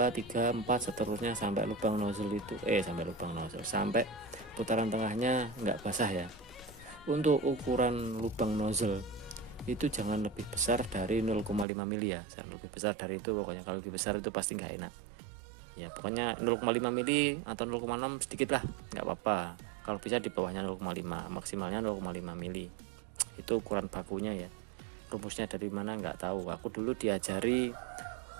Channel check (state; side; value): drops out; left; at 11.7 s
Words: 3, 4 seterusnya sampai lubang nozzle itu sampai putaran tengahnya nggak basah ya. Untuk ukuran lubang nozzle itu jangan lebih besar dari 0,5 mili ya, jangan lebih besar dari itu pokoknya. Kalau lebih besar itu pasti nggak enak ya. Pokoknya 0,5 mili atau 0,6 sedikit lah, nggak apa-apa. Kalau bisa di bawahnya 0,5, maksimalnya 0,5 mili. Itu ukuran bakunya ya. Rumusnya dari mana nggak tahu. Aku dulu diajari